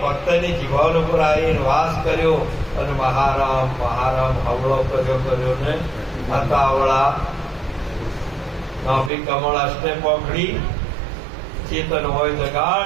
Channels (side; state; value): left; drops out; at 9.1 s